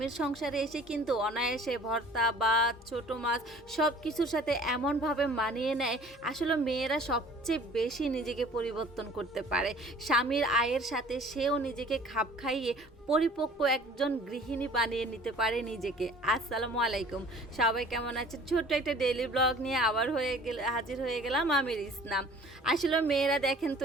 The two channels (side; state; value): both; normal; correlation 0.50